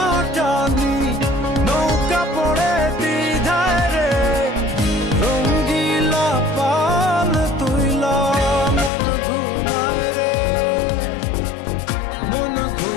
নৌকা পড়ে দ্বিধায় রে রঙ্গিলা পাল তুইলা মন ঘুমায় রে মন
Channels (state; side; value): drops out; right; at 8.9 s